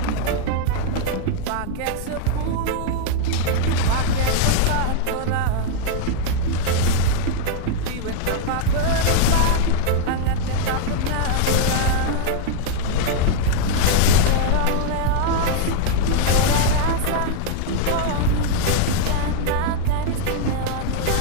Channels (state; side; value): different; both; correlation 0.00